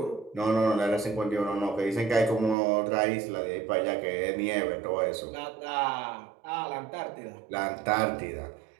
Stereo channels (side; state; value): left; drops out; at 2.6 s